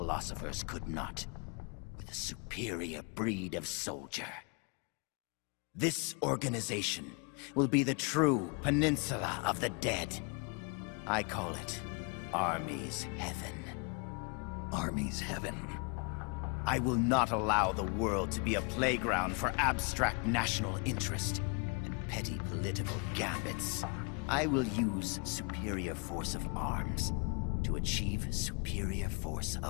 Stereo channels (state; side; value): quieter; right; 34.3 dB